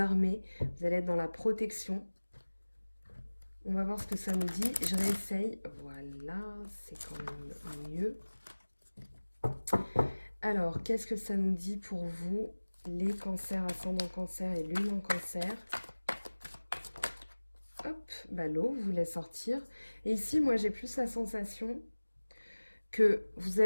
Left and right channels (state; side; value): inverted; both; correlation -1.00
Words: vous allez être dans la protection. On va voir ce que ça nous dit. Je réessaye. Voilà, c'est quand même mieux. Alors, qu'est-ce que ça nous dit pour vous, les cancers, ascendant cancer et lune en cancer? Hop, bah l'eau voulait sortir. Et ici, moi, j'ai plus la sensation que vous